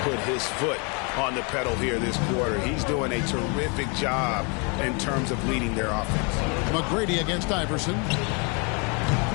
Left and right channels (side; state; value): right; quieter; 33.5 dB